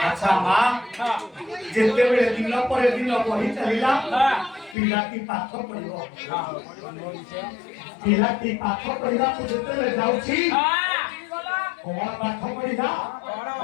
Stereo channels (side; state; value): right; drops out; at 4.8 s